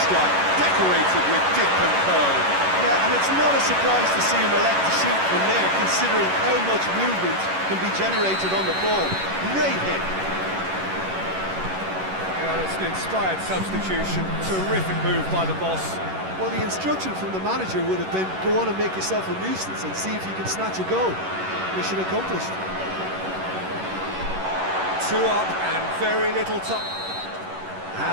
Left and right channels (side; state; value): left; late; 11 ms